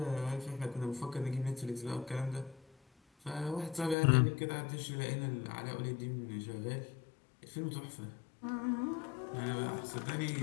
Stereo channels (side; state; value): right; drops out; at 4.0 s